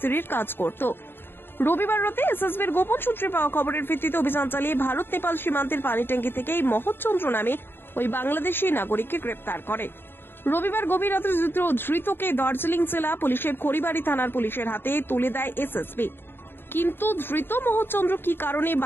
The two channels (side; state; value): right; late; 0.10 ms